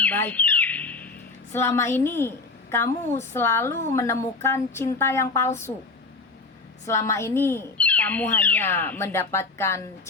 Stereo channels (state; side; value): quieter; right; 3.7 dB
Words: baik. Selama ini kamu selalu menemukan cinta yang palsu. Selama ini kamu hanya mendapatkan